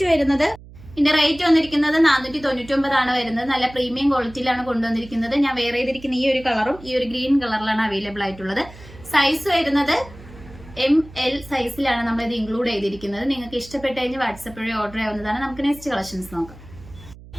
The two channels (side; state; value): right; noise; hum, 19 dB below the sound